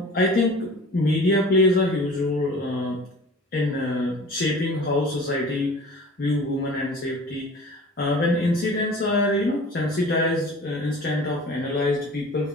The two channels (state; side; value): normal; both; correlation 0.43